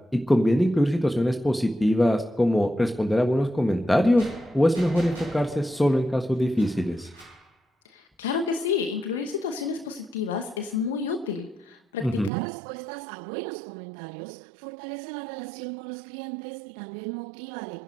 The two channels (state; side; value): drops out; left; at 12.3 s